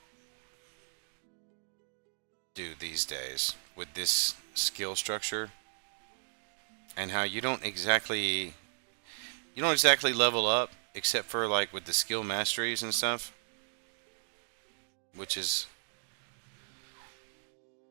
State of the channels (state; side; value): silent; left; digital silence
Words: do these days with this skill structure, and how you don't exactly level up except for like with the skill masteries and stuff, which is